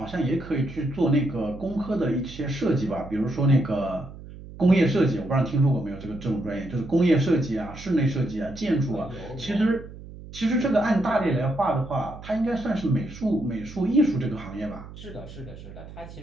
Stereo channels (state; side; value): noise; right; hum, 15 dB below the sound